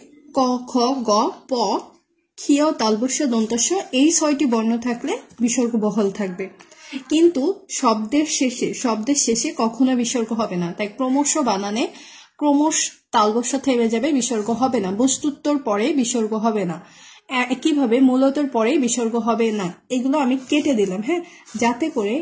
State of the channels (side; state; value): both; identical; correlation 1.00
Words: ক, খ, গ, প, ক্ষীয়, তালবস্য, দন্তস্য এই 6টি বর্ণ থাকলে বিসর্গ বহাল থাকবে, কিন্তু শব্দের শেষে কখনো বিসর্গ হবে না। তাই ক্রমশ বানানে ক্রমশ তালবস্য থেমে যাবে, বিসর্গ হবে না। বস্তুত্বর পরে বিসর্গ হবে না, একইভাবে মূলতর পরে বিসর্গ হবে না। এগুলো আমি কেটে দিলাম, হ্যাঁ, যাতে করে